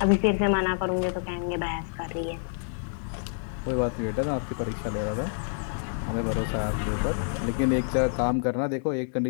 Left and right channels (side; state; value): right; silent; 60 dB below the other